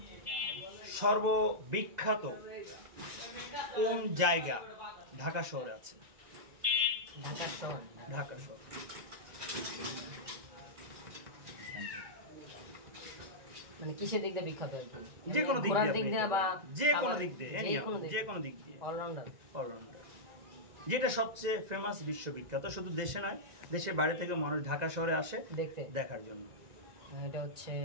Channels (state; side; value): late; left; 1.9 ms